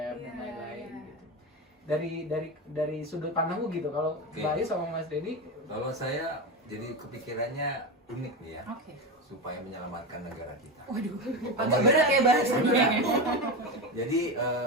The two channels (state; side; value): normal; both; correlation 0.18